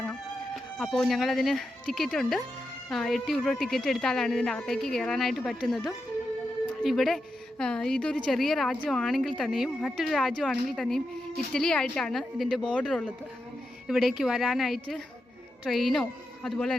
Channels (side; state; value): both; normal; correlation 0.87